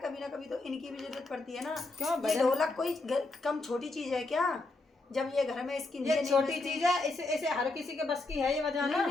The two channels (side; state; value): right; quieter; 3.2 dB